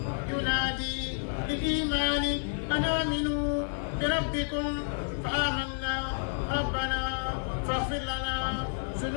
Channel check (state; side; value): silent; right; digital silence